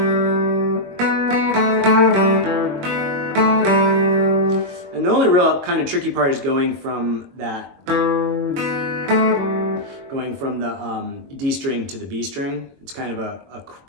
And the only real kind of tricky part is going from the D string to the B string. It's kind of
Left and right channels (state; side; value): late; left; 22 ms